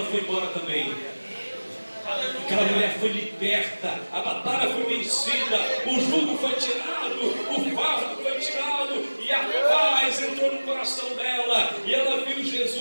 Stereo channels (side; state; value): both; inverted; correlation -1.00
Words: foi embora também. Aquela mulher foi liberta, a batalha foi vencida, o jugo foi tirado, o fardo foi tirado, e a paz entrou no coração dela, e ela viu